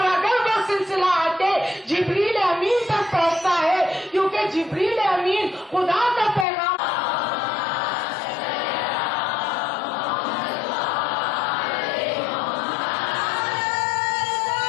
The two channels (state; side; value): drops out; right; at 6.5 s